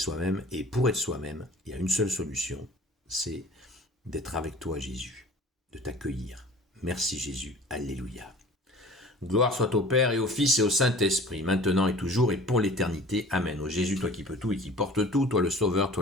et pour être soi-même, il y a une seule solution, c'est d'être avec toi, Jésus, de t'accueillir. Merci Jésus, alléluia. Gloire soit au Père et au Fils et au Saint-Esprit, maintenant et toujours et pour l'éternité. Amen. Ô Jésus, toi qui peux tout et qui portes tout, toi le Sauveur,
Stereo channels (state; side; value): normal; both; correlation 0.45